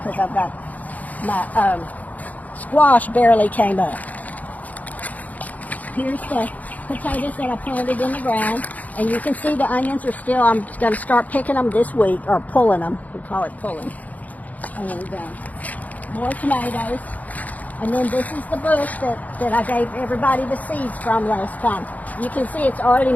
I've got my squash barely came up. Here's the potatoes that I planted in the ground. And you can see the onions are still, I'm going to start picking them this week, or pulling them. We call it pulling. And more tomatoes. And then this is the bush that I gave everybody the seeds from last time. You can see it's already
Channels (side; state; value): right; late; 0.077 ms